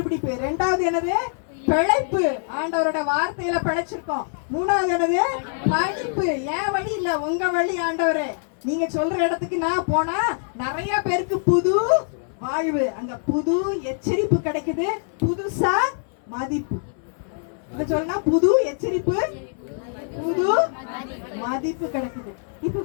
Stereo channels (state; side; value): silent; right; 58 dB below the other